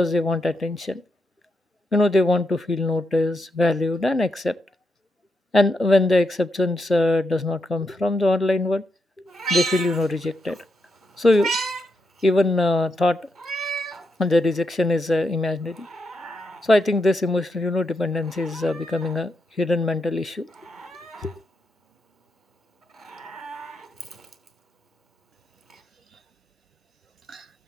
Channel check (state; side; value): normal; both; correlation 0.83